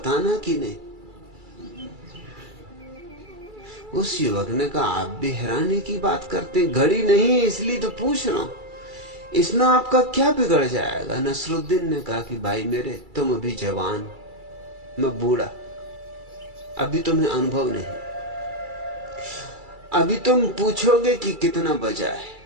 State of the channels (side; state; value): left; late; 2.3 ms